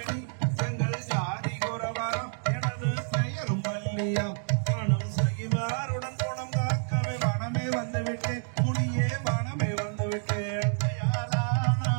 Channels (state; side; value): silent; left; 59 dB below the other